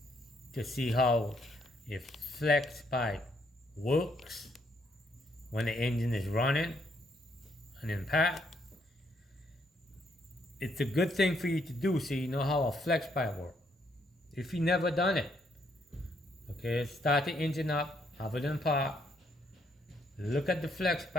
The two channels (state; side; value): normal; both; correlation 0.72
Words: to see how if flex pipe works when the engine is running and in pack. It's a good thing for you to do so you know how a flex pipe works. If you never done it, okay, start the engine up, have it in park, look at the flex